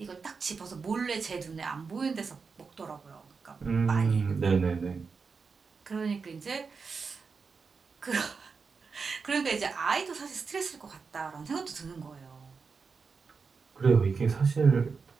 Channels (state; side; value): quieter; left; 5.1 dB